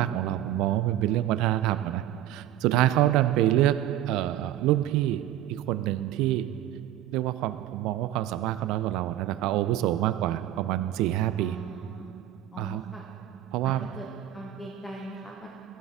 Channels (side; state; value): left; quieter; 12.6 dB